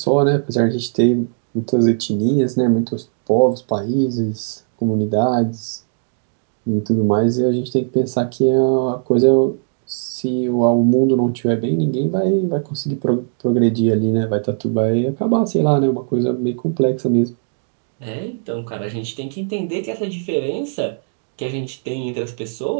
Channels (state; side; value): silent; left; digital silence